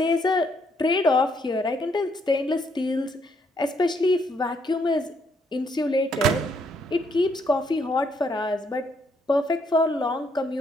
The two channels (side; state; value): both; normal; correlation 0.72